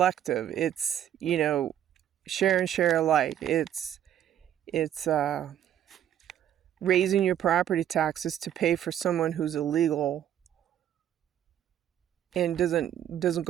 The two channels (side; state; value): left; quieter; 10.7 dB